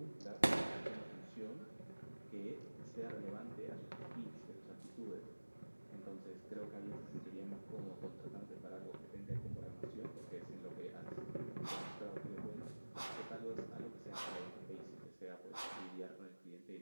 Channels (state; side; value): inverted; both; correlation -1.00